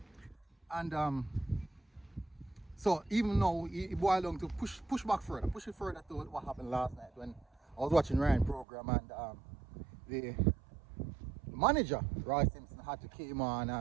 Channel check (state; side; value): drops out; left; at 8.7 s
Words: And so even now, he boiled down to push it further to what happened last night when I was watching Ryan program, and the manager Roy Simpson had to came on